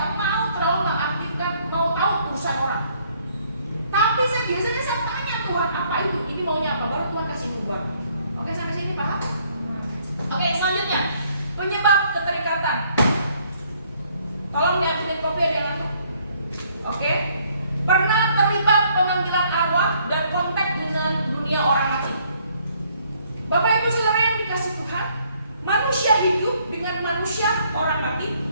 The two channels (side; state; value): both; inverted; correlation -0.65